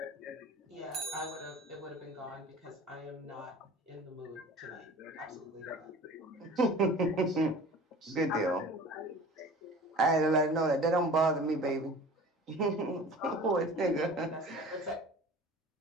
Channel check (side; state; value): both; normal; correlation 0.41